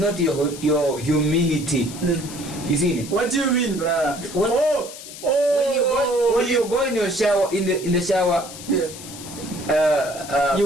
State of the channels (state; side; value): noise; left; hiss, 14 dB below the sound